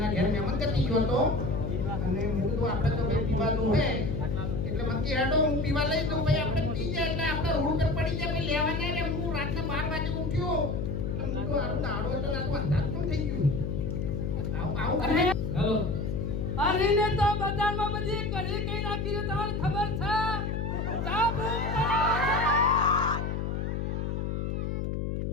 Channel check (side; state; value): left; noise; hum, 1 dB below the sound